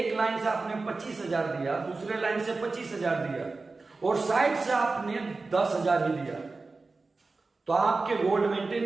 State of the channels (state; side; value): quieter; left; 3.7 dB